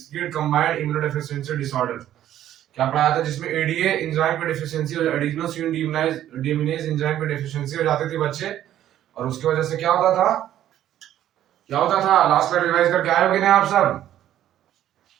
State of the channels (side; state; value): left; quieter; 11.9 dB